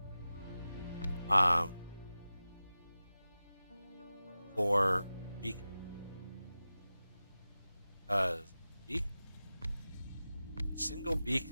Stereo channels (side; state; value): both; inverted; correlation -0.95